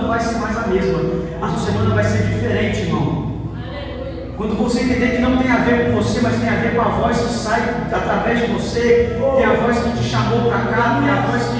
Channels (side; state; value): both; identical; correlation 1.00